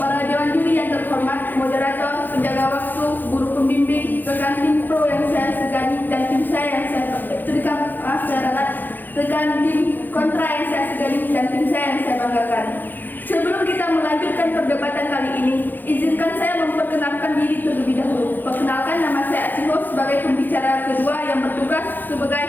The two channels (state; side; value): late; right; 0.088 ms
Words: dewan juri yang terhormat, moderator, penjaga waktu, guru pembimbing, rekan tim pro yang saya segani dan tim saya yang saya rekan tim kontra yang saya segani dan tim saya yang saya banggakan. Sebelum kita melanjutkan perdebatan kali ini, izinkan saya memperkenalkan diri terlebih dahulu. Perkenalkan, nama saya Acihol sebagai pembicara kedua yang bertugas sebagai